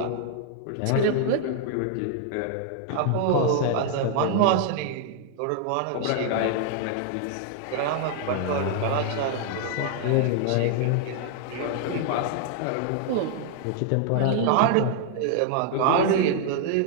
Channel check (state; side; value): different; both; correlation 0.00